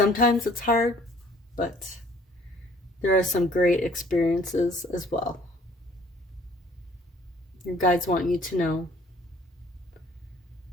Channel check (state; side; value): normal; both; correlation 0.57